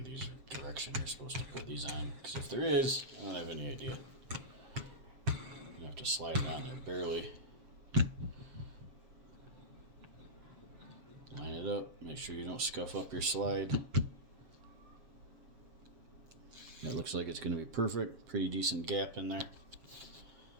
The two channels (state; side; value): late; left; 7.4 ms